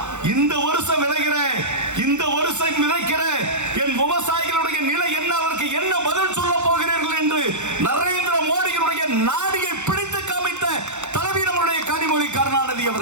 இந்த வருஷம் விளைகிற இந்த வருஷம் விதைக்கிற என் விவசாயிகளுடைய நிலை என்ன, அவருக்கு என்ன பதில் சொல்ல போகிறீர்கள் என்று நரேந்திர மோடியினுடைய நாடியை பிடித்து காமித்த தலைவி நம்முடைய கனிமொழி கருணாநிதி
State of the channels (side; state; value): left; late; 0.83 ms